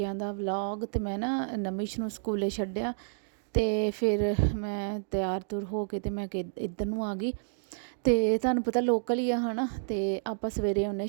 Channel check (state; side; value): silent; left; digital silence